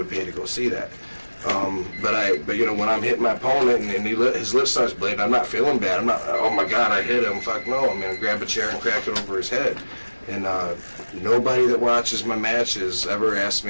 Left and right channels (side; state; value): both; inverted; correlation -1.00